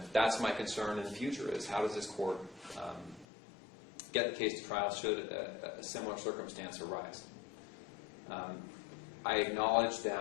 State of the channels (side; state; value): right; drops out; at 3.2 s